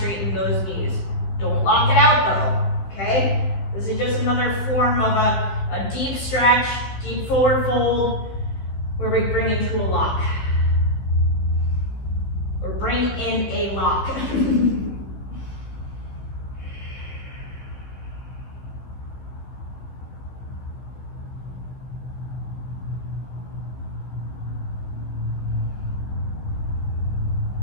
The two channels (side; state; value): right; late; 15 ms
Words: those knees. Don't lock it out though, okay? This is just another form of a deep stretch, deep forward fold, where we bring into a lock. Or bring in a lock.